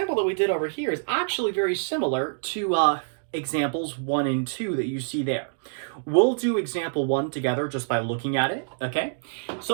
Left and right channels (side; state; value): left; silent; digital silence